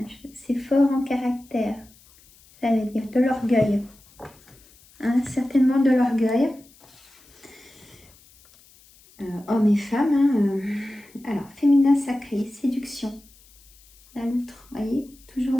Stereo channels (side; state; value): left; noise; hiss, 27 dB below the sound